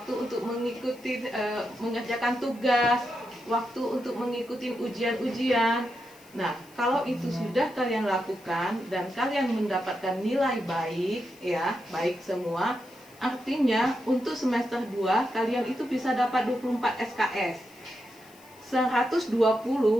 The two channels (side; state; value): left; noise; hiss, 26 dB below the sound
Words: untuk mengikuti mengerjakan tugas, waktu untuk mengikuti ujian-ujian. Nah, kalau itu sudah kalian lakukan dan kalian mendapatkan nilai baik, ya, baik semua, artinya untuk semester 2 kalian itu bisa dapat 24 SKS. 120,